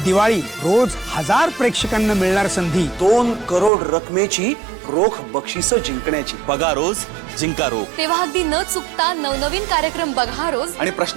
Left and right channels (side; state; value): left; drops out; at 3.7 s